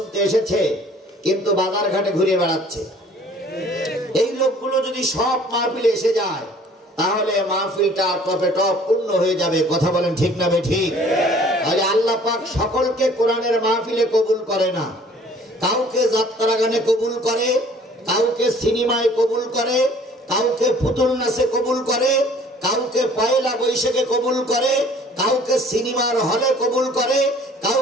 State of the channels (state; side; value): normal; both; correlation 0.53